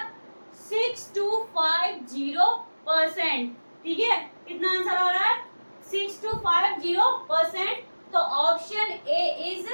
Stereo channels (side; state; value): both; inverted; correlation -1.00